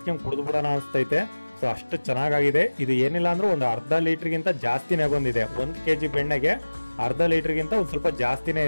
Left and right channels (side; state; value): both; inverted; correlation -1.00